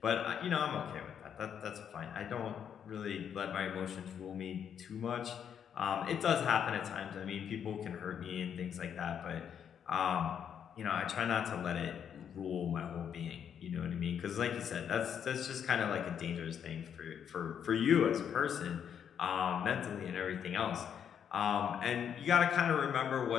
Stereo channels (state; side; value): quieter; right; 8.3 dB